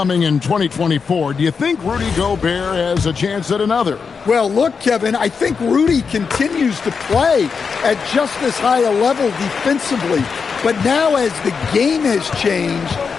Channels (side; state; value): right; quieter; 5.6 dB